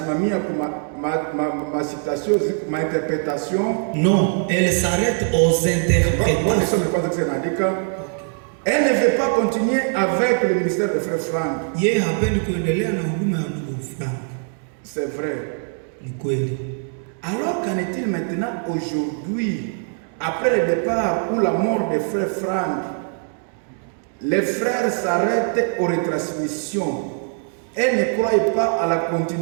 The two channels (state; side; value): silent; left; 55 dB below the other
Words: kwa ma citation, ma interprétation. Non, elle s'arrête aux interprétations. Elle ne veut pas continuer avec le ministère de Frère Frank. Yeye hapendi kuendelea na huduma ya ndugu Frank. C'est vrai. Ni kweli. Alors qu'en est-il maintenant aujourd'hui, après le départ ou la mort de Frère Frank, les frères s'arrêtent aux retransmissions et ne croient pas à la